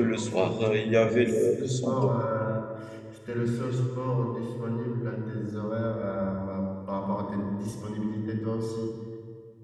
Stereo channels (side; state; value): both; identical; correlation 1.00